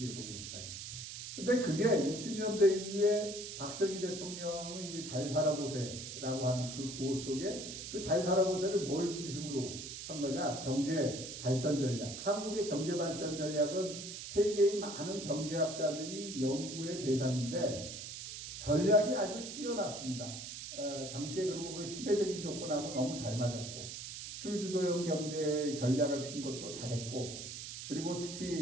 근데 그게 60년대 이후에 박정희 대통령의 잘 살아보세라고 하는 그 구호 속에 그 잘 살아보세를 뭘 중심으로 한 거냐? 경제 발전 전략. 한국의 경제 발전 전략은 세계의 많은 경제학자들이 연구의 대상인데 전략이 아주 뛰어났습니다. 당시에 그리고 그 시대적인 조건하고 너무 잘 맞았고 수출 주도형 경제 전략을 핀 것도 잘했고 그리고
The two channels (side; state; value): right; noise; hiss, 8 dB below the sound